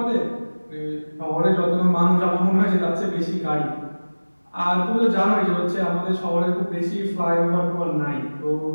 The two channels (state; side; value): inverted; both; correlation -1.00